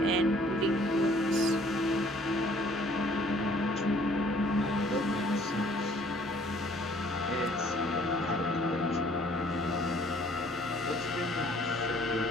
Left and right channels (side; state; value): both; normal; correlation 0.59